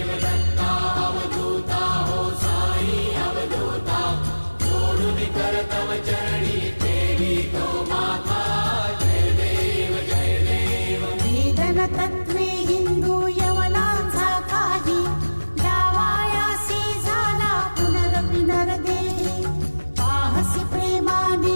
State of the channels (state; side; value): inverted; both; correlation -1.00